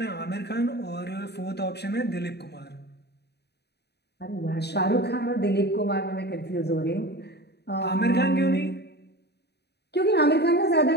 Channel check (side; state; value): right; late; 0.48 ms